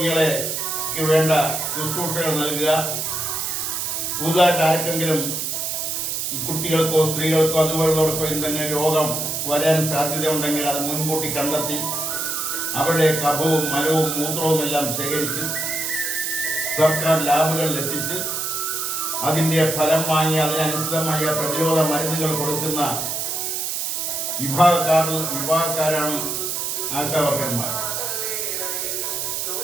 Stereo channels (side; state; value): right; noise; hiss, 2 dB below the sound